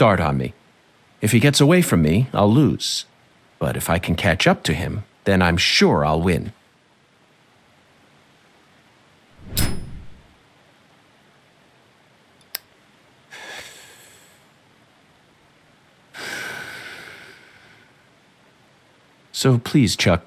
on me. If he gets away from me, I'll lose. But if I can catch up to him, then I'm sure I'll win. So please, Chuck,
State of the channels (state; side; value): identical; both; correlation 1.00